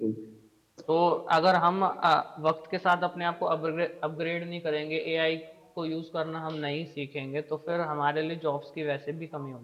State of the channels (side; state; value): both; identical; correlation 1.00